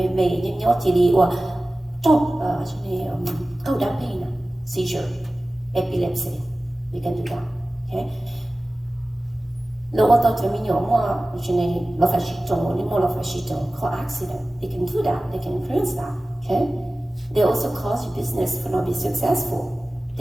mê nhưng nhớ chỉ đi qua trong câu đam mê nè, seizure, epilepsy, we can do that, okay? Lỡ qua tàu chấm nhiều mà cho nên nó phải chịu trồng, nhưng mà nó phải chịu trồng, có accident, they can do that, they can influence that, okay? They also cause you business for not be successful.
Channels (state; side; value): normal; both; correlation 0.97